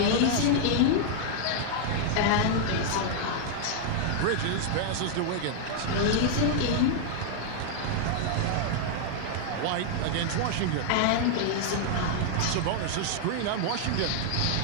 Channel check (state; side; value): different; both; correlation -0.01